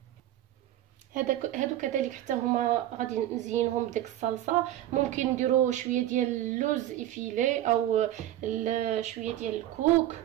هادو كذلك حتى هما غادي نزينهم بديك الصلصه. ممكن نديروا شويه ديال اللوز افيلي او شويه ديال الكوك،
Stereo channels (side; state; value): left; quieter; 13.3 dB